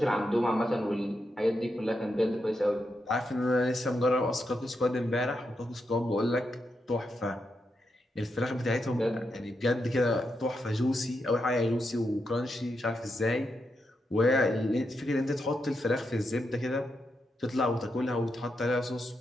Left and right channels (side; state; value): both; normal; correlation 0.84